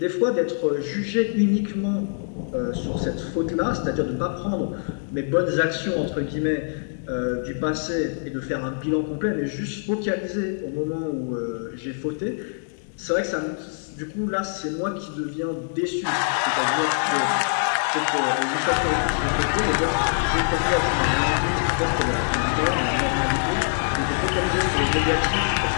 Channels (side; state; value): right; silent; digital silence